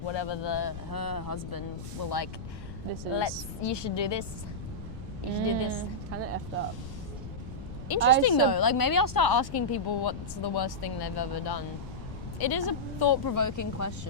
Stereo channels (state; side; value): noise; left; rumble, 10 dB below the sound